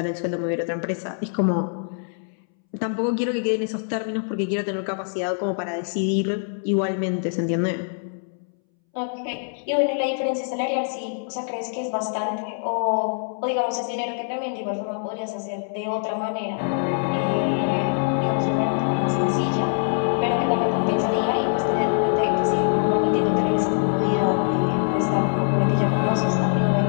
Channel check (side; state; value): right; silent; 63 dB below the other